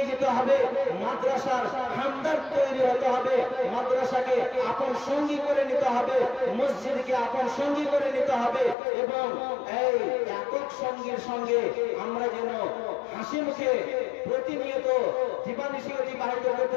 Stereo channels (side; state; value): right; drops out; at 8.8 s